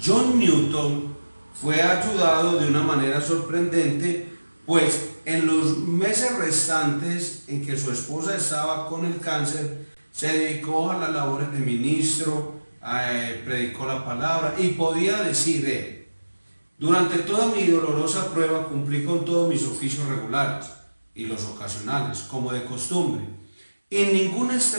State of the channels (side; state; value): both; inverted; correlation -1.00